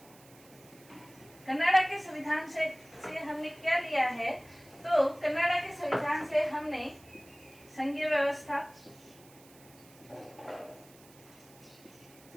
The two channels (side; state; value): right; noise; hiss, 24 dB below the sound